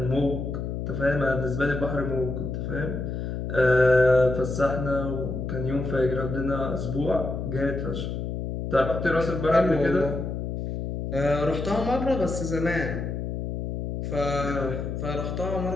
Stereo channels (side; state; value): left; noise; hum, 4 dB below the sound